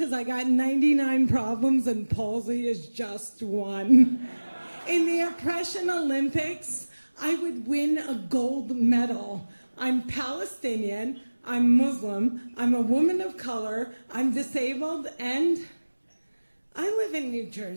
I got 99 problems and palsy is just one. In the Oppression Olympics, I would win a gold medal. I'm Palestinian, I'm Muslim, I'm a woman of color, I'm disabled, and I live in New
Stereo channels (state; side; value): inverted; both; correlation -1.00